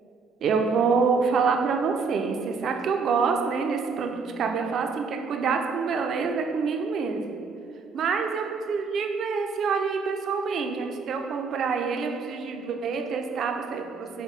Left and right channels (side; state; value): left; quieter; 5.0 dB